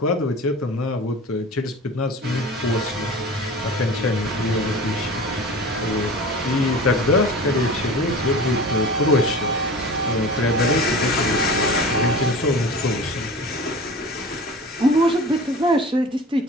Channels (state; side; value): normal; both; correlation 0.37